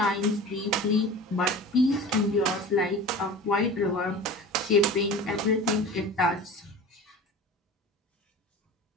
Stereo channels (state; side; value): normal; both; correlation 0.36